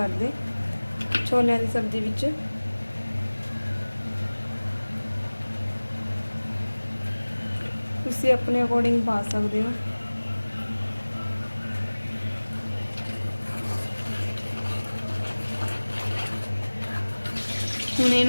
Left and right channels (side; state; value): both; inverted; correlation -1.00